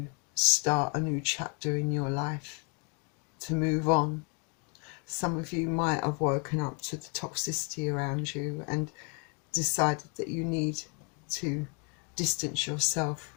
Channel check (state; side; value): quieter; right; 34.5 dB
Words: start a new chapter in your life, to move on. Some of you might have woken up to the toxicity around you and decided that you need to distance yourself